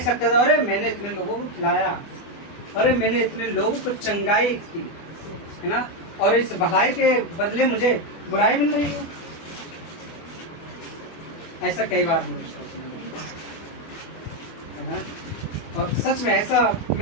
सकता था, अरे मैंने इतने लोगों को खिलाया, अरे मैंने इतने लोगों को चंगाई की, है ना, और इस भलाई के बदले मुझे बुराई मिल रही है। ऐसा कई बार मुझे सोचने लगा, है ना, और सच में ऐसा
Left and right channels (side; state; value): right; late; 24 ms